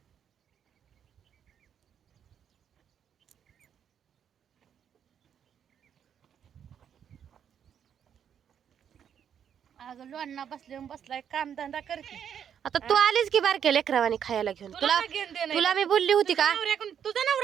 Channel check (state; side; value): quieter; left; 8.5 dB